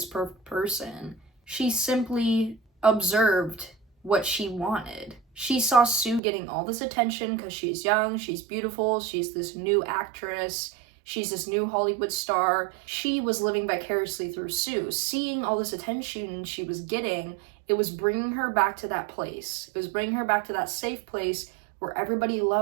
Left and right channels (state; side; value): drops out; left; at 6.2 s